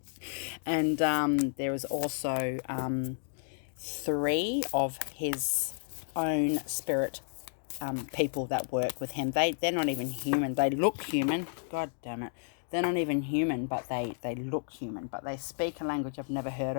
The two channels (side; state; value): right; silent; digital silence